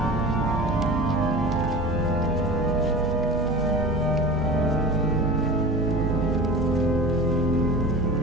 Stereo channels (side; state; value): both; normal; correlation 0.34